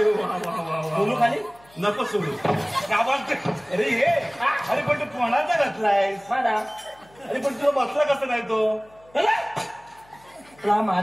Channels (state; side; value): noise; left; hum, 29 dB below the sound